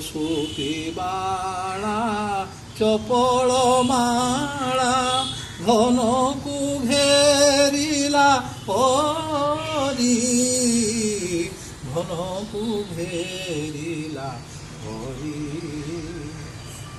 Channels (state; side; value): identical; both; correlation 1.00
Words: বাড়া চপল মালা ঘনকু ঘেরিলা হরি, ঘনকু ঘেরিলা হরি।